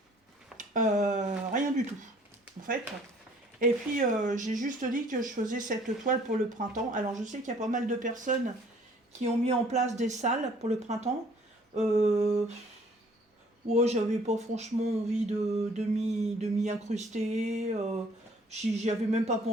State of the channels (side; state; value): both; normal; correlation 0.57